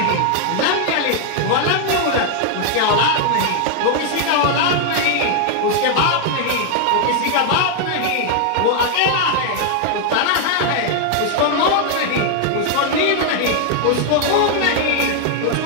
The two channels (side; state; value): both; different; correlation 0.00